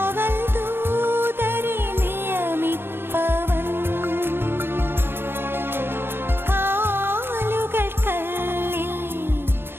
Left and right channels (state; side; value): late; left; 0.11 ms